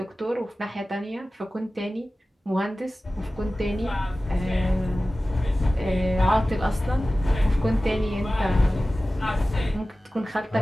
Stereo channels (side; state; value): both; normal; correlation 0.96